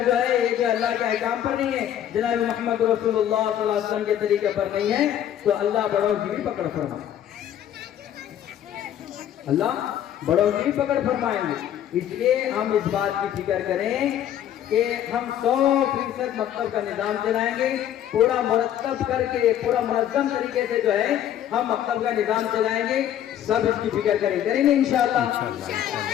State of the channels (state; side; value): quieter; right; 10.8 dB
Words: جو ہے یہ جو اللہ کے احکام پر نہیں ہے، جناب محمد رسول اللہ صلی اللہ علیہ وسلم کے طریقے پر نہیں ہے، تو اللہ بڑوں کی بھی پکڑ فرمائے، اللہ بڑوں کی بھی پکڑ فرمائیں گے۔ اس لیے ہم اس بات کی فکر کریں کہ ہم 100% مکتب کا نظام چلائیں گے، پورا مرتب کر کے، پورا منظم طریقے سے جو ہے ہم مکتب کا نظام چلائیں گے۔ سب اس کی فکر کریں گے انشاءاللہ،